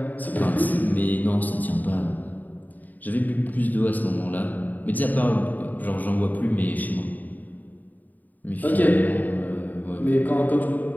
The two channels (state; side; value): late; right; 0.083 ms